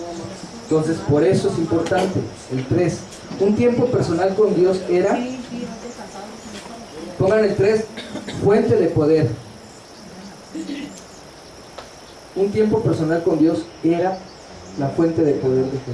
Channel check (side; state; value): both; identical; correlation 1.00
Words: entonces por eso es importante. El 3, un tiempo personal con Dios era, pongan el 3, fuente de poder. Un tiempo personal con Dios era la fuente de poder de